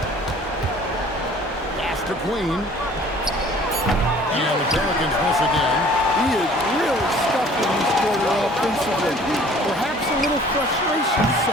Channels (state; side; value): normal; both; correlation 0.52